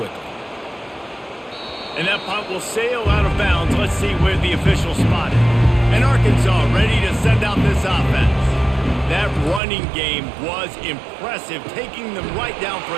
And that punt will sail out of bounds. Let's see where the official spotted. And Arkansas ready to send out this offense. That running game was impressive, taking them right down for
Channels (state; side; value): drops out; left; at 9.6 s